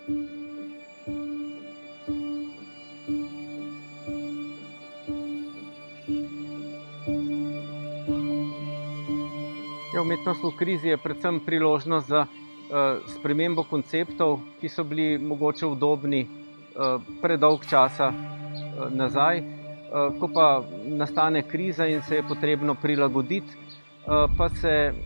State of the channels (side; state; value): both; inverted; correlation -1.00